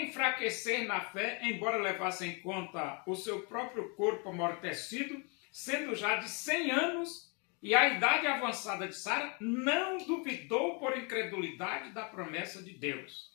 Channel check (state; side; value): quieter; right; 34.1 dB